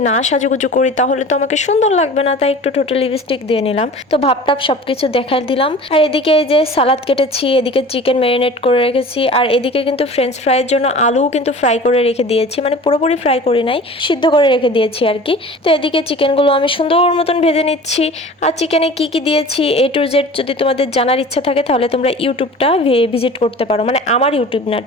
না সাজুগুজু করি তাহলে তো আমাকে সুন্দর লাগবে না, তাই একটু টোটাল লিপস্টিক দিয়ে নিলাম। তো ভাবটাপ সবকিছু দেখাই দিলাম। আর এদিকে এই যে সালাদ কেটেছি, এদিকে চিকেন ম্যারিনেট করে রেখেছি, আর এদিকে কিন্তু ফ্রেঞ্চ ফ্রাইয়ের জন্য আলুও কিন্তু ফ্রাই করে রেখে দিয়েছি, মানে পুরোপুরি ফ্রাই করি নাই, সিদ্ধ করে রেখে দিয়েছি আর কি। তো এদিকে চিকেনগুলো আমি সুন্দর মতন ভেজে নিচ্ছি। আর চিকেনে কি কি দিয়েছি A to Z যদি তোমাদের জানার ইচ্ছা থাকে তাহলে তোমরা ইউটিউবটা ভিজিট করতে পারো, মানে আমার ইউটিউব না,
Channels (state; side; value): normal; both; correlation 0.41